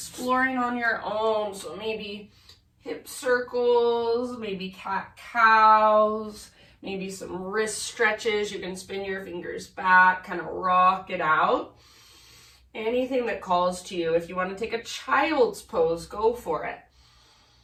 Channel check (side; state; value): both; identical; correlation 1.00